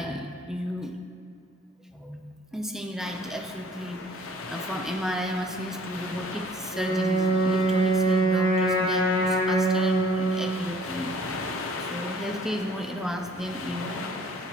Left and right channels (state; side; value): normal; both; correlation 0.55